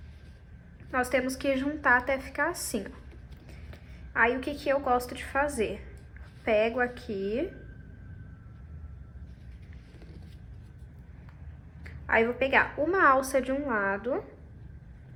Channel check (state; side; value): identical; both; correlation 1.00